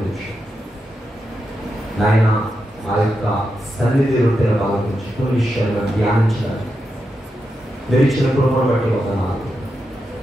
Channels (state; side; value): normal; both; correlation 0.87